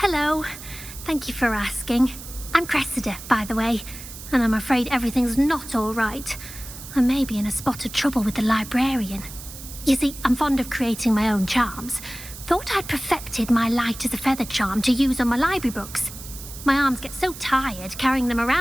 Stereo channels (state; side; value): noise; right; hiss, 13 dB below the sound